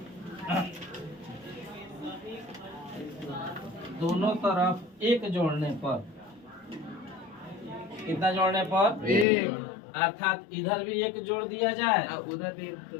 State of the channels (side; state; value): right; drops out; at 9.2 s